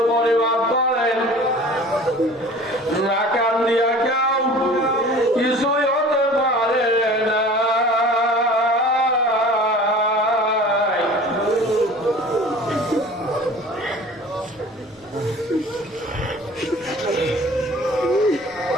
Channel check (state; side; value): normal; both; correlation 0.44